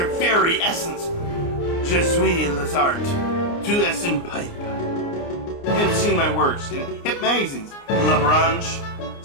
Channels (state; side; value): late; right; 29 ms